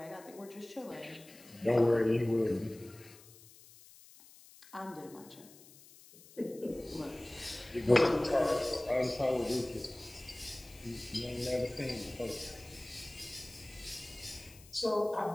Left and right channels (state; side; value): noise; left; hiss, 22 dB below the sound